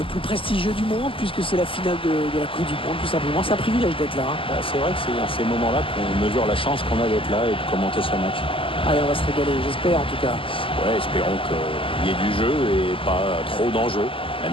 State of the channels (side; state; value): right; late; 0.25 ms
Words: plus prestigieux du monde, puisque c'est la finale de la Coupe du Monde, tout simplement. C'est un privilège d'être là. C'est vrai que c'est dans ces moments-là qu'on mesure la chance qu'on a d'être là et de commenter ce match. Allez, on va se régaler, j'espère en tout cas. Ouais, espérons qu'il y ait du jeu et pas trop d'enjeux,